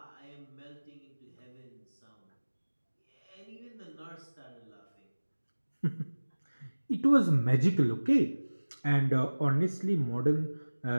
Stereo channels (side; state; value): both; inverted; correlation -1.00